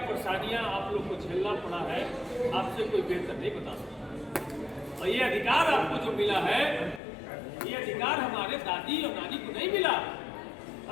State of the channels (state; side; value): drops out; right; at 7.0 s